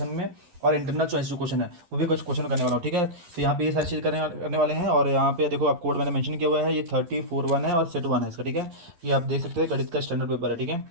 में और इंटरनल चॉइस जो क्वेश्चन है वो भी कुछ क्वेश्चन करने वाला हूँ, ठीक है। तो यहाँ पे ये सारी चीज़ करने वाले हैं। और यहाँ पे देखो आप कोड मैंने मेंशन किया हुआ है, ये 34 1 है और सेट 1 है इसका, ठीक है। ये आप देख सकते हो गणित का स्टैंडर्ड पेपर है, ठीक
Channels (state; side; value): late; left; 11 ms